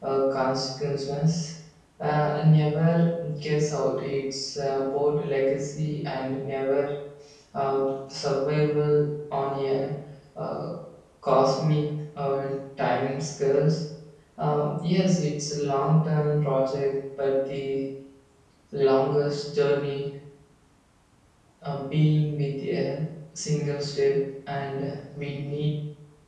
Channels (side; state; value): both; identical; correlation 1.00